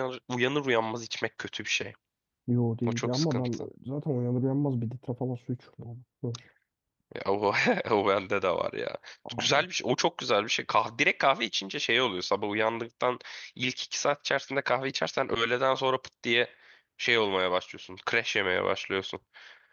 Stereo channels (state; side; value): identical; both; correlation 1.00